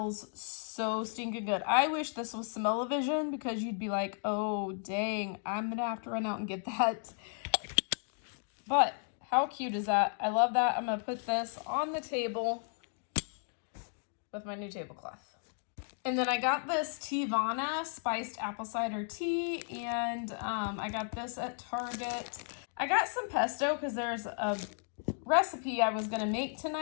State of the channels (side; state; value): right; silent; 55 dB below the other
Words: so stinking good. I wish this was smell-o-vision because you'd be like, oh dang, I'm gonna have to run out and get that. But how cute is that? I love that. I'm gonna put this on the table with my new tablecloth. And then I got this Teavana spiced apple cider tea, and I got this at Target. I got some pesto because there's a recipe I was gonna make